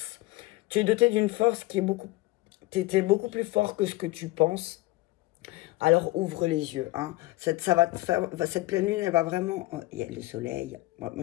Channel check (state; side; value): quieter; right; 19.3 dB